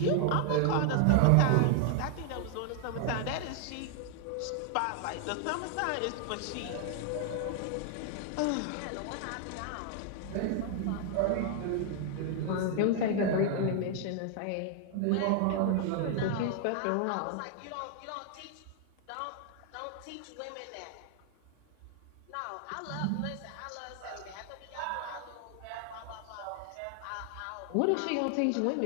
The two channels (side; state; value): both; different; correlation 0.00